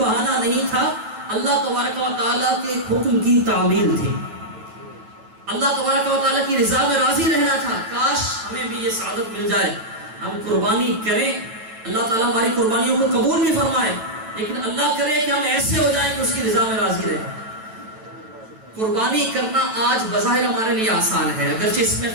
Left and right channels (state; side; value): late; left; 9.1 ms